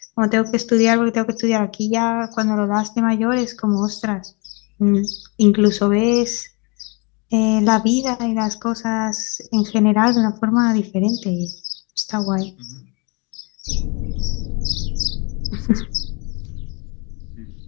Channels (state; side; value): quieter; right; 31.0 dB